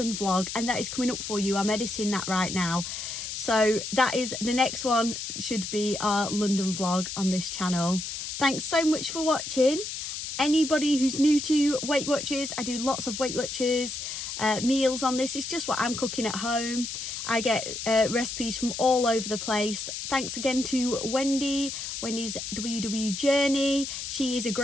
vlog, and that is coming up for you. I'm editing that right now. So that is the next one, should be our London vlog on this channel. Thanks so much for watching. Anybody who's new to Weight Watchers, I do lots of Weight Watchers meals on this. It's just what I'm cooking at home. I get recipes from all over the place. Thanks again to Wendi, Wendy's WW Journey. She is a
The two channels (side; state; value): left; noise; hiss, 6 dB below the sound